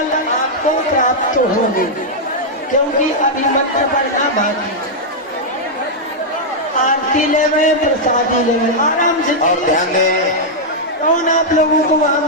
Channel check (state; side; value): normal; both; correlation -0.05